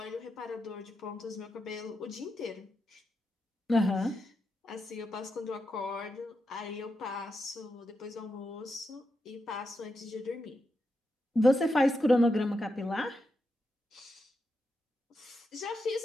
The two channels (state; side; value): normal; both; correlation 0.86